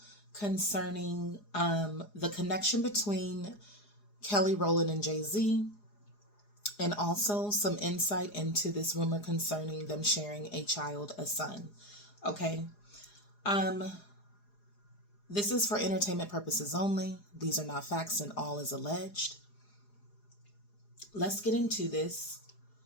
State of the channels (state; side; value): late; right; 4.8 ms